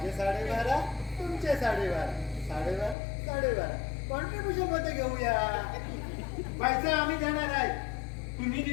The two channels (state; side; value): drops out; right; at 3.0 s